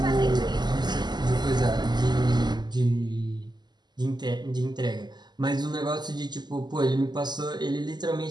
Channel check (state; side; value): late; left; 0.21 ms